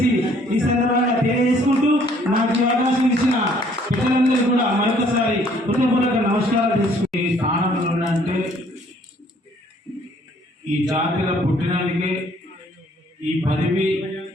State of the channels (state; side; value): normal; both; correlation 0.61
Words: ఈ సందర్భంగా తెలియజేసుకుంటూ నాకు ఈ అవకాశం ఇచ్చిన పిల్లలందరూ కూడా మరొకసారి హృదయపూర్వక నమస్కారాలు చేసుకుంటే ఈ స్థానంలో ఉన్నంటే ఈ జాతిలో పుట్టినందుకే ఈ పదవి,